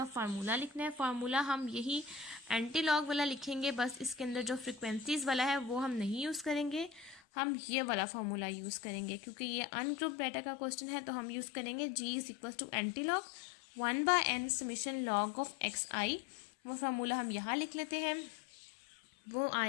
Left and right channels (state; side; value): drops out; right; at 7.2 s